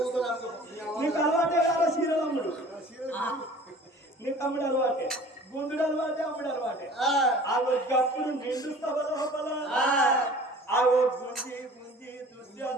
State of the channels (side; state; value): both; normal; correlation 0.46